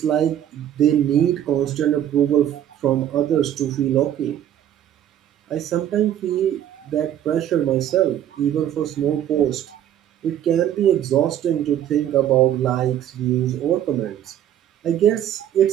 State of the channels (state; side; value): quieter; left; 10.9 dB